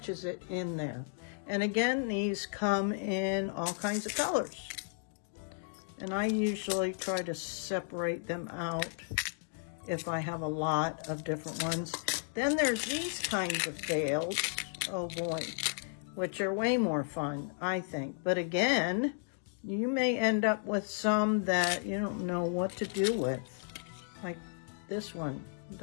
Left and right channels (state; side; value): silent; right; digital silence